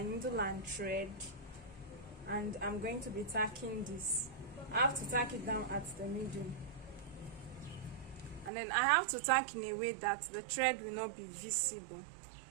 needle and thread, and I'm going to be tacking this. I have to tack it down at the middle, and then I have to tack in a way that the thread will not be visible.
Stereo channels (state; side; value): drops out; left; at 8.5 s